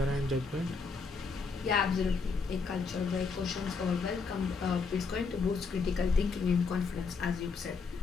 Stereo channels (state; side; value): quieter; right; 4.7 dB